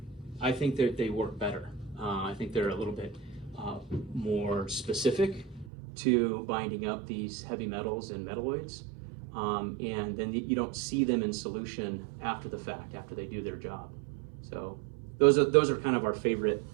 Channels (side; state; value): left; drops out; at 5.7 s